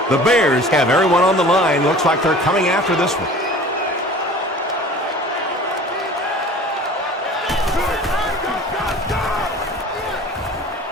The Bears have everyone on the line. Looks like they're coming after this one.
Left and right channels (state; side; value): normal; both; correlation 0.43